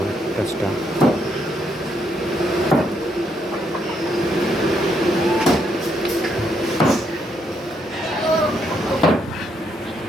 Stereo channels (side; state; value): both; normal; correlation 0.75